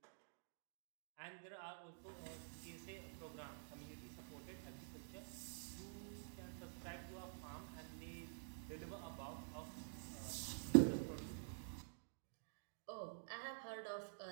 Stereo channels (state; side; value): silent; left; digital silence